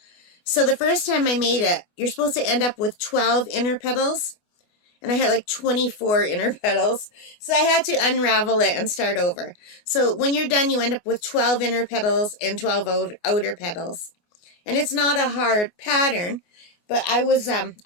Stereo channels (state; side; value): late; right; 24 ms